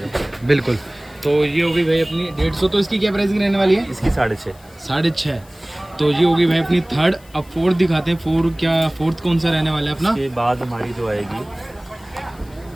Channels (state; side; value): noise; left; hiss, 27 dB below the sound